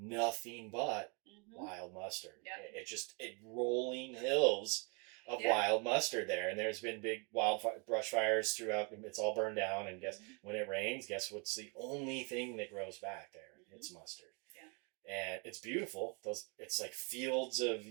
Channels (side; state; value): left; quieter; 33.9 dB